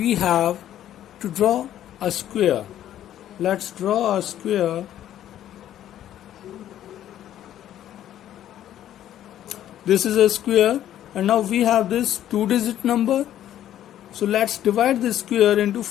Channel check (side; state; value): right; quieter; 11.7 dB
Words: have to draw a square. Let's draw a square. This is a square, and now we have this 2-digit number. So let's divide this square into